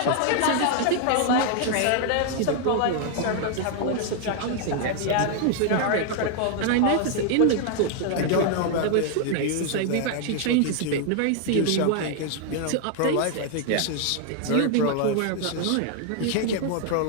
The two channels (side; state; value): both; different; correlation 0.00